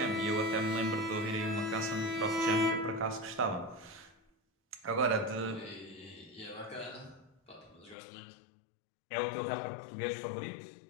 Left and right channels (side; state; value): right; drops out; at 8.0 s